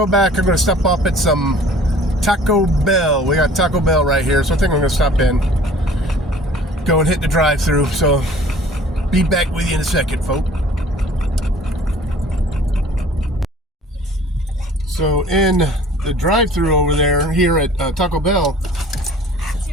back, I'm going to stop up at some Taco Bell. We got Taco Bell right here, so I think I'm going to stop in, go and hit the drive-thru. So be back with you in a second, folks. So in the drive-thru over there, here at Taco Bell.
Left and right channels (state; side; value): normal; both; correlation 0.49